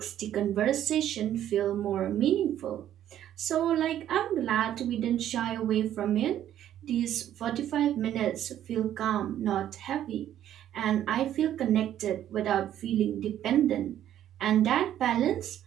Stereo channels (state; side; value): quieter; left; 11.3 dB